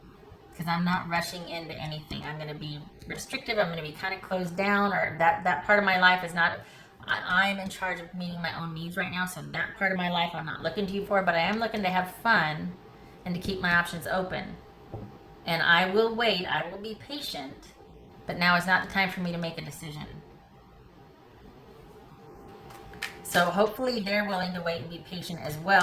because I'm not rushing into anything. I'm going to be restrictive. I'm going to be kind of closed down, or that part of my life is not. I'm in charge of meeting my own needs right now, so that part of my life I'm not looking to you for, but I am looking to have fun and to keep my options open. And I will wait. I will be patient. But now is not the time for me to make a decision. So hopefully they're willing to wait and be patient as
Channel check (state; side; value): identical; both; correlation 1.00